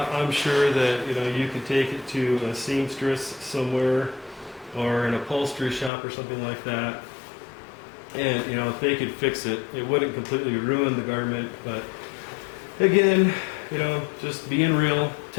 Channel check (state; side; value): drops out; right; at 5.9 s